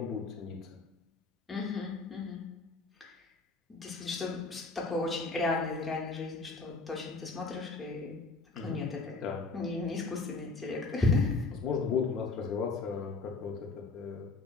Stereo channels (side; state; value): right; quieter; 3.8 dB